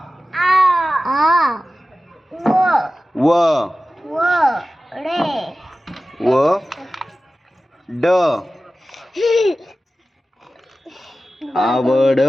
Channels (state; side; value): normal; both; correlation 0.95